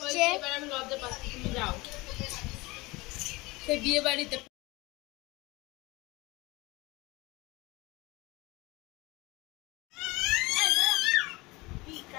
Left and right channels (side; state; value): right; quieter; 22.9 dB